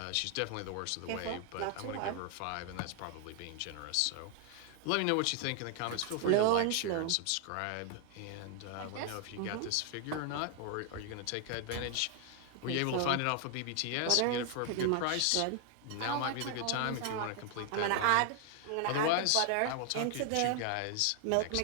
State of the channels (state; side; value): different; both; correlation 0.00